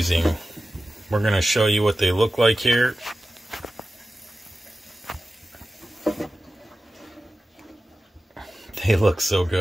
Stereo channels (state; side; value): normal; both; correlation 0.94